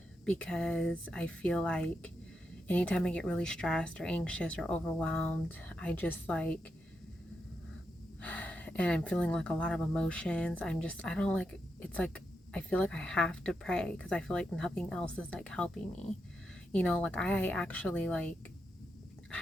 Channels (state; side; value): normal; both; correlation 0.85